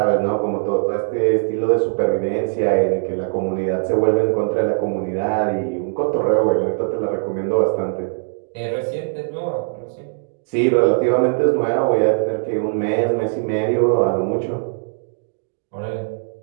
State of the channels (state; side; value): silent; left; 65 dB below the other